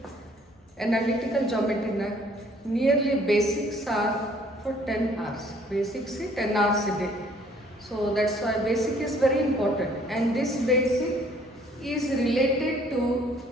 Analytical geometry na nearly basics are for 10 hours. Basics is 10 hours a day. So that's why basic is very important, and this basic is related to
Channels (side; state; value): both; normal; correlation 0.59